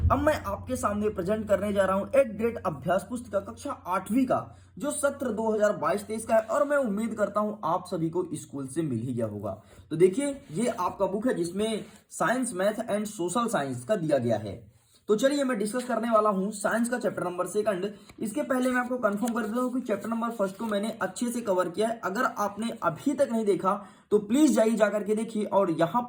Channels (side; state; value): both; identical; correlation 1.00